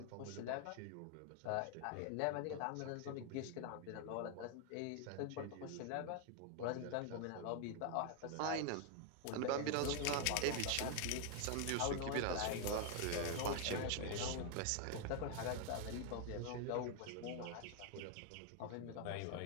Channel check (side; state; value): both; different; correlation 0.00